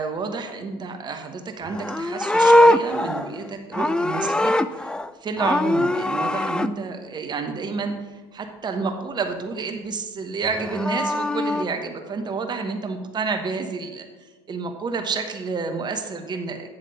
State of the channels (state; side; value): normal; both; correlation 0.75